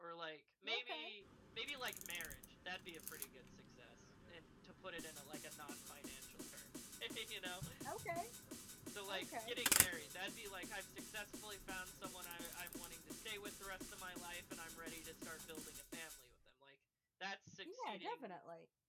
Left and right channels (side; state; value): both; identical; correlation 1.00